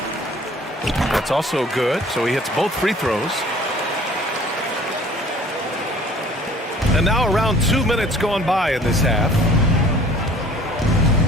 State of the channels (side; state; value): both; normal; correlation 0.51